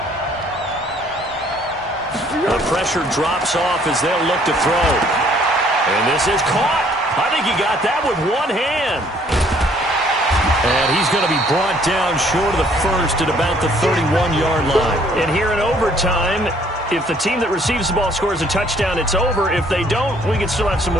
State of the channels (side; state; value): both; normal; correlation 0.62